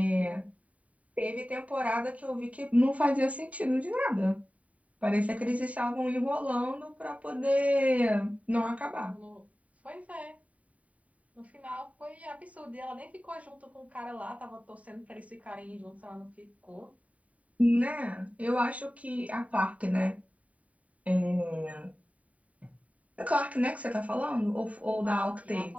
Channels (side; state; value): left; late; 0.068 ms